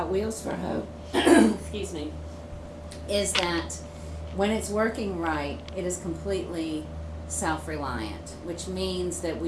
Wheels for Hope, excuse me, is that when it's working right, it is completely self-reliant, which means that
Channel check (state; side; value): identical; both; correlation 1.00